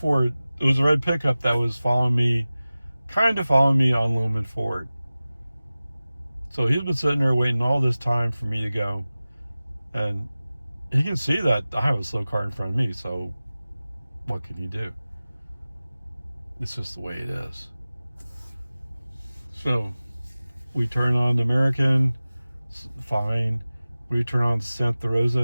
it was a red pickup that was kind of following me on Lumen Ford. So he's been sitting there waiting all this time for me to go. And he can see that I have a slow car in front of me, so what can he do? It's just the way it is. So we turn on the American, fine. We turn on Santa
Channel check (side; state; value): both; inverted; correlation -0.97